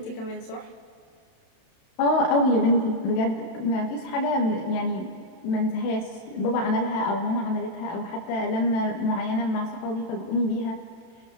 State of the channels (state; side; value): late; right; 31 ms